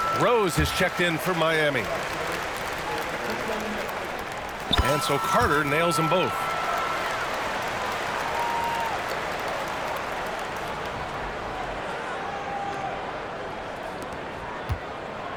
Rose has checked in for Miami. And so Carter nails them both.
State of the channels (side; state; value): both; identical; correlation 1.00